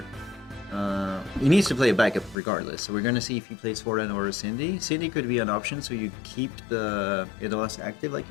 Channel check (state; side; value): drops out; right; at 2.4 s